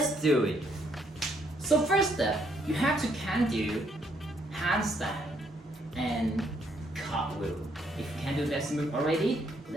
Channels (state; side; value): normal; both; correlation 0.70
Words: do it. So first step, you have to can do handstand and cartwheel. If you can do that move already,